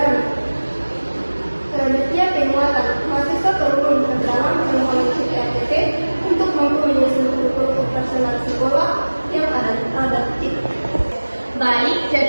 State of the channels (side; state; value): both; inverted; correlation -1.00